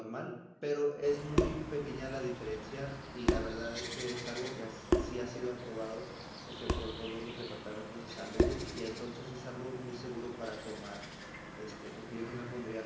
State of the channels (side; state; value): both; identical; correlation 1.00